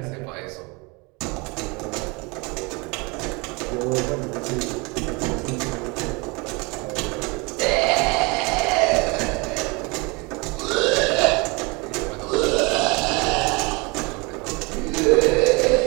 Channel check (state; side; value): quieter; left; 27.7 dB